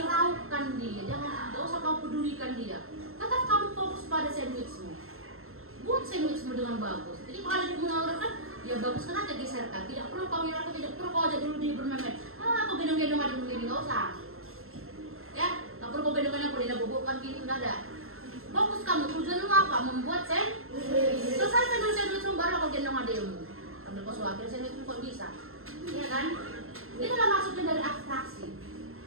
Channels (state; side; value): late; left; 0.62 ms